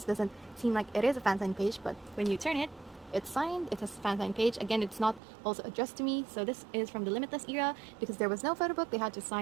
doesn't seem like it is a fan sign page, but when you turn it, it's signed. It's a fan sign page. Again, it's not also addressed to me. So this is from the Limitless era. Because there was no photo book, they had to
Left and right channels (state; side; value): drops out; left; at 5.2 s